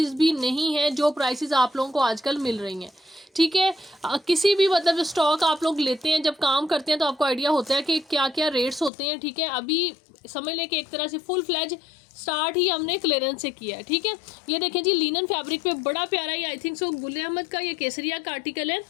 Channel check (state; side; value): drops out; right; at 8.9 s